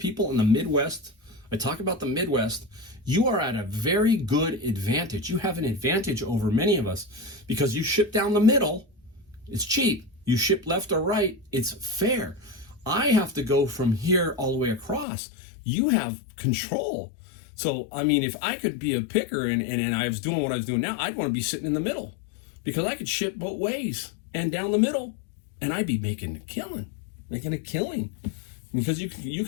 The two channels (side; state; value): right; drops out; at 15.1 s